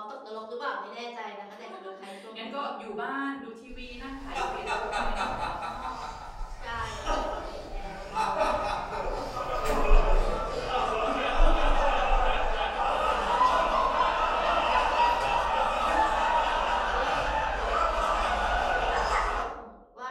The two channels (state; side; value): identical; both; correlation 1.00